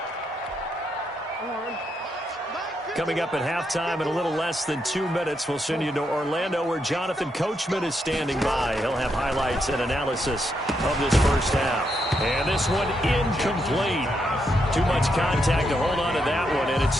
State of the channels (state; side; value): normal; both; correlation 0.80